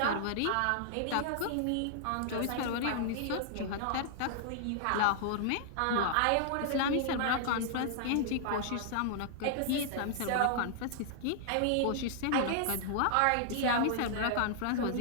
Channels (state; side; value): different; both; correlation -0.01